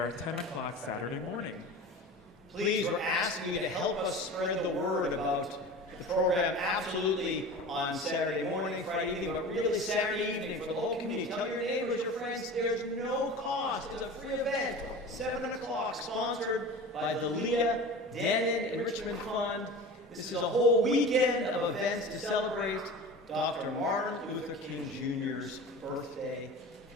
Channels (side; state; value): both; normal; correlation 0.35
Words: 10 o'clock Saturday morning. Please, we're asking you to help us spread the word about the program absolutely on Saturday morning, Friday evening, but really Saturday evening for the whole community. Tell your neighbors, your friends, there's no cost. It's a free event, 7 o'clock, sponsored by the Leah Denon Enrichment Fund. This is a whole weekend of events to celebrate Dr. Martin Luther King Jr.'s birthday.